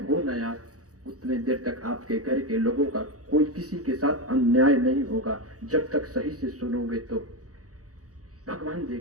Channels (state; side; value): late; left; 0.66 ms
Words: हो ना यार, उतने देर तक आपके घर के लोगों का कोई किसी के साथ अन्याय नहीं होगा। जब तक सही से सुनोगे तो भगवान